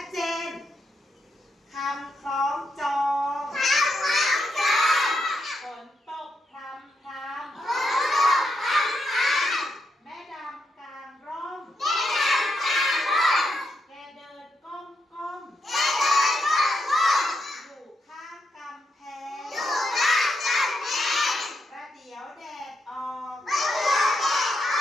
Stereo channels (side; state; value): both; normal; correlation 0.82